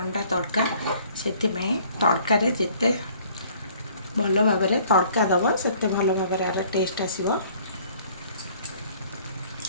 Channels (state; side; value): inverted; both; correlation -0.57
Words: तड़का से तड़कार जिते भल भाव तड़का दब से भल भाव टेस्ट आसो।